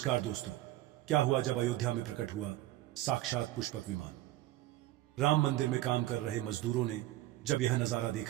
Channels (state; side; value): quieter; left; 15.8 dB